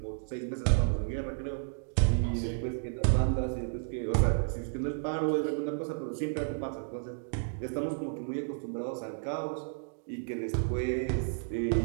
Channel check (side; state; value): left; silent; digital silence